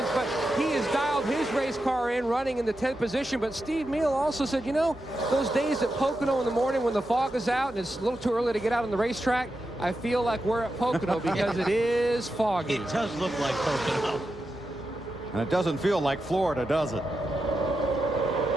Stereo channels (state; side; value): normal; both; correlation 0.89